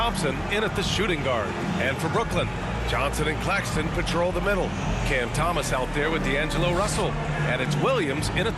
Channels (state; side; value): identical; both; correlation 1.00